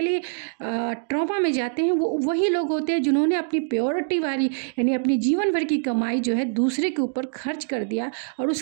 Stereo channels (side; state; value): left; silent; digital silence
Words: ट्रॉमा में जाते हैं, वो वही लोग होते हैं जिन्होंने अपनी प्योरिटी वाली, यानी अपनी जीवन भर की कमाई जो है दूसरे के ऊपर खर्च कर दिया, और